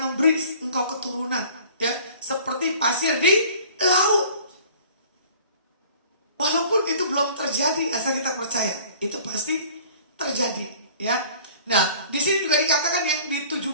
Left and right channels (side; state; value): both; inverted; correlation -0.49